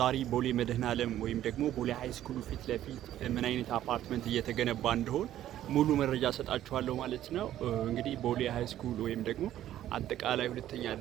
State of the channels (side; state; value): left; quieter; 12.5 dB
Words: ቦሌ መድኃኔዓለም ወይም ደግሞ ቦሌ ሃይ ስኩል ፊት ለፊት ምን አይነት አፓርትመንት እየተገነባ እንደሆነ ሙሉ መረጃ ሰጣችኋለሁ ማለት ነው። እንግዲህ ቦሌ ሃይ ስኩል ወይም ደግሞ አጠቃላይ ሁለተኛ